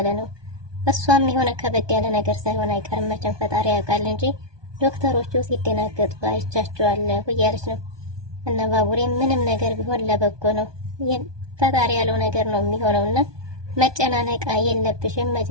ነው። እሷም የሆነ ከበድ ያለ ነገር ሳይሆን አይቀርም መቼም ፈጣሪ ያውቃል እንጂ ዶክተሮቹ ሲደናገጡ አይቻቸዋለሁ እያለች ነው። እና ባቡሬም ምንም ነገር ቢሆን ለበጎ ነው፣ ፈጣሪ ያለው ነገር ነው የሚሆነውና መጨናነቅ የለብሽም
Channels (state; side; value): late; left; 1.2 ms